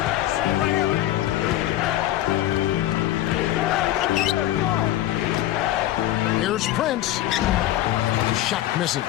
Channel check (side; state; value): right; quieter; 13.9 dB